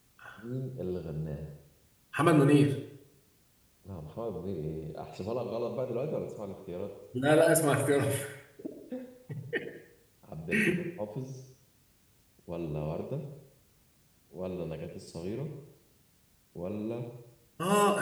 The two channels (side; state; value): both; identical; correlation 1.00